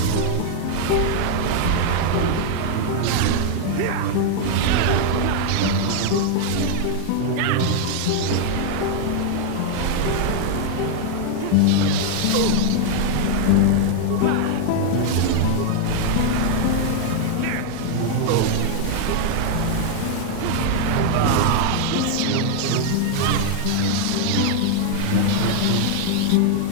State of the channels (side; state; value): both; different; correlation 0.00